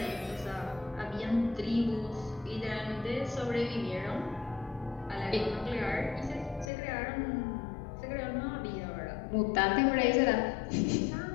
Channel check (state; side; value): drops out; right; at 6.7 s